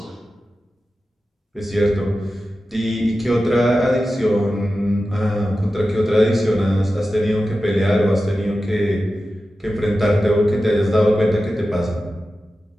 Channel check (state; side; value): normal; both; correlation 0.93